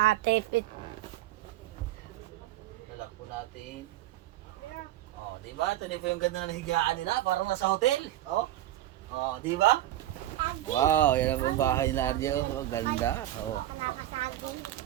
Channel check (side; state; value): left; quieter; 14.0 dB